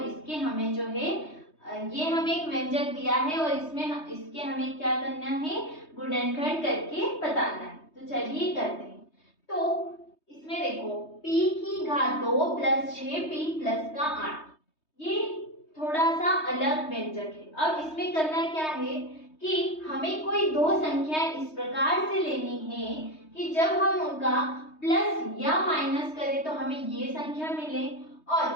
इसके हमें जो है ये हमें एक व्यंजक दिया है और इसके हमें क्या करना है, गुणनखंड करके बताना है। तो चलिए करते हैं। तो इसमें देखो p की घात 2 प्लस 6p प्लस का 8, ये थोड़ा सा अलग व्यंजक है। अब इसमें करना क्या है कि हमें कोई दो संख्याएं इस प्रकार से लेनी है कि जब हम उनका प्लस या माइनस करें तो हमें ये संख्या मिले और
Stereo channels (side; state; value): right; late; 3.2 ms